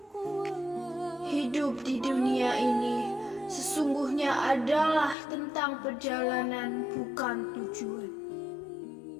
Hidup di dunia ini sesungguhnya adalah tentang perjalanan, bukan tujuan.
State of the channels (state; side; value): drops out; right; at 5.2 s